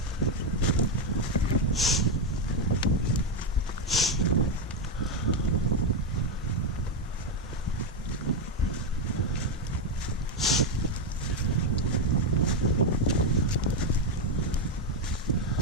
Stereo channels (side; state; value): both; normal; correlation 0.07